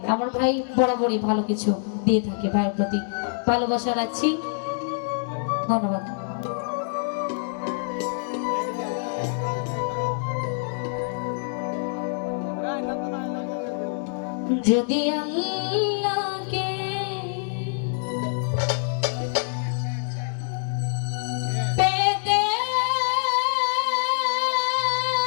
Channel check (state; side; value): silent; right; digital silence